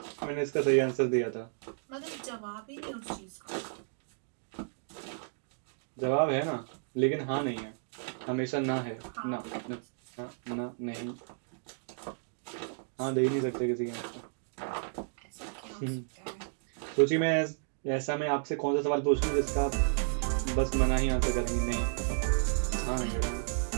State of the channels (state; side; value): silent; left; digital silence